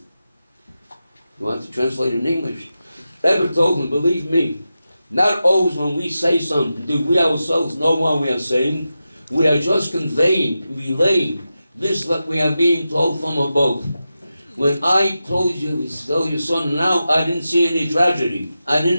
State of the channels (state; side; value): inverted; both; correlation -0.91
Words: You want to translate in English? Rebbe told him, believe me, not always when we say something do we ourselves know what we are saying. We are just conveying, relaying this what we are being told from above. When I told you, tell your son now, I didn't see any tragedy. I